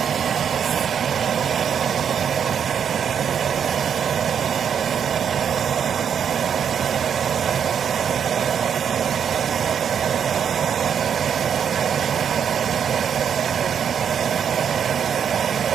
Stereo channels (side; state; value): left; quieter; 7.8 dB